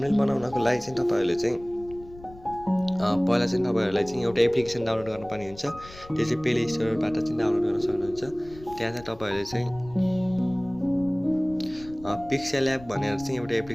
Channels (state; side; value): noise; left; rumble, 19 dB below the sound